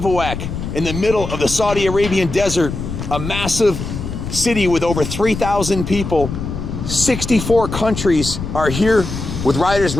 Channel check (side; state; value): left; noise; rumble, 6 dB below the sound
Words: in the middle of the Saudi Arabian desert, a massive city with over 3,000 people. 64 countries are here with riders